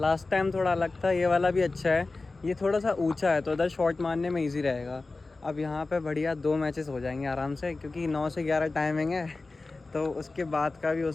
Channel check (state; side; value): quieter; right; 3.5 dB